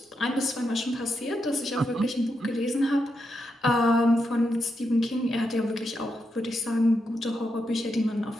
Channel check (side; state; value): both; normal; correlation 0.84